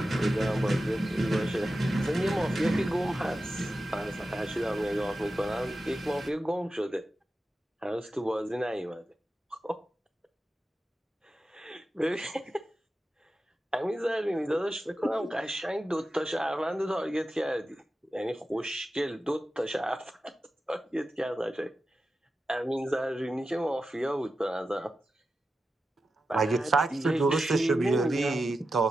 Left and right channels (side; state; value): both; normal; correlation 0.92